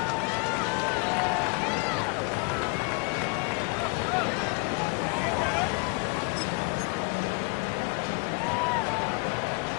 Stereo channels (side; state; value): right; quieter; 32.1 dB